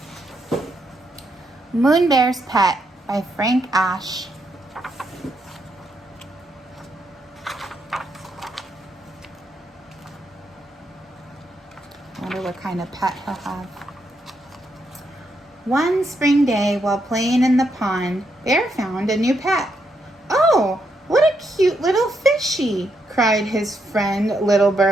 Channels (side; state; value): both; normal; correlation 0.79